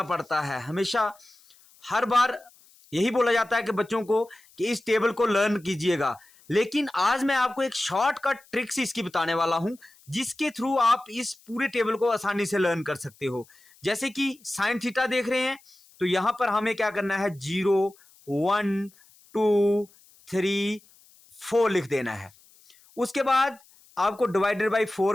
पड़ता है। हमेशा हर बार यही बोला जाता है कि बच्चों को कि इस टेबल को लर्न कीजिएगा, लेकिन आज मैं आपको एक शॉर्टकट ट्रिक्स इसकी बताने वाला हूं जिसके थ्रू आप इस पूरे टेबल को आसानी से लर्न कर सकते हो। जैसे कि साइन थीटा देख रहे हैं, तो यहां पर हमें क्या करना है, 0 1 2 3 4 लिख देना है। उसके बाद आपको डिवाइडेड बाई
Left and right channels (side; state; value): left; noise; hiss, 28 dB below the sound